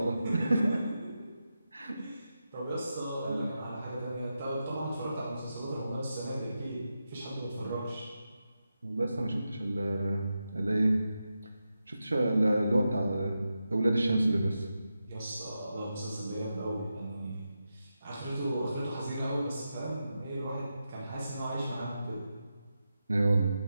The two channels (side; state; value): both; inverted; correlation -0.89